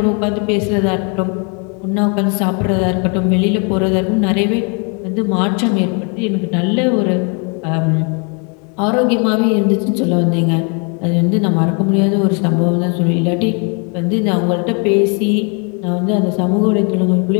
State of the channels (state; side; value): quieter; right; 36.5 dB